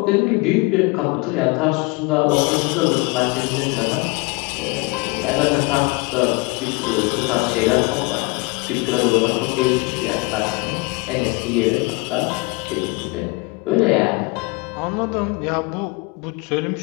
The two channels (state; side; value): quieter; right; 27.1 dB